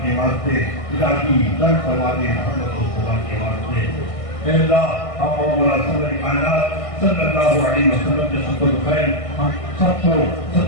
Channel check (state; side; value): late; right; 1.6 ms